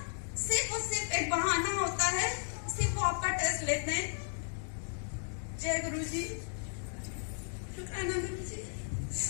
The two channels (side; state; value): right; silent; digital silence